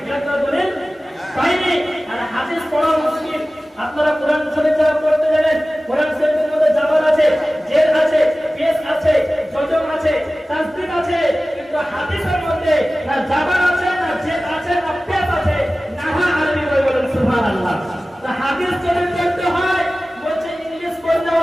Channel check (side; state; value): both; normal; correlation 0.97